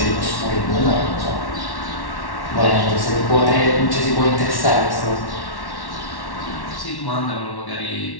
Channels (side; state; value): right; late; 1.1 ms